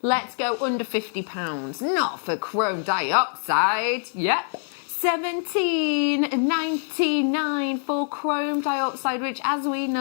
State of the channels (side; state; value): right; silent; 62 dB below the other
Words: Let's go under £50. Not for chrome dioxide. Yep. $17.99 for chrome dioxide, which, as we